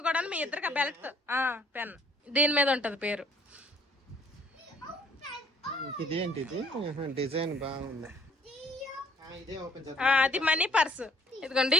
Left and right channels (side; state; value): both; normal; correlation 0.61